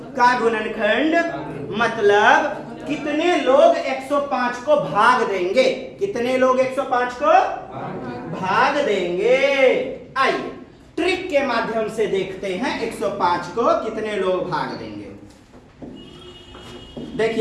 का गुणनखंड मतलब कितने लोग 105 को भाग देंगे? कितने लोग 105 को भाग देंगे? आइए ट्रिक के माध्यम से देखते हैं 105 को कितने लोग भाग देंगे।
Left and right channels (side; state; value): both; identical; correlation 1.00